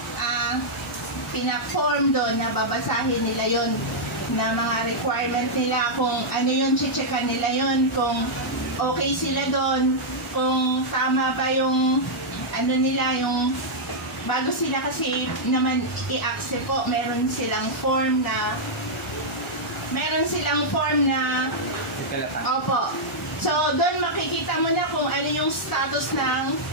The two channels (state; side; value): normal; both; correlation -0.07